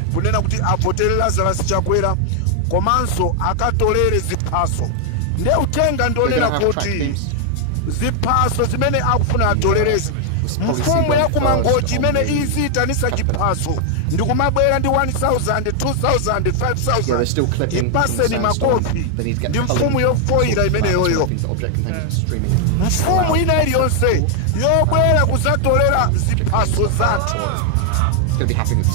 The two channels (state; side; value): different; both; correlation 0.00